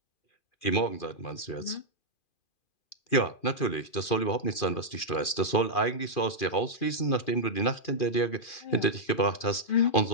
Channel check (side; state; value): right; late; 2.4 ms